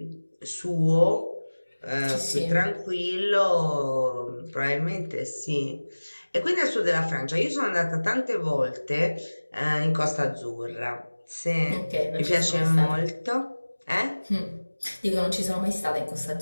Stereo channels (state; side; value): inverted; both; correlation -1.00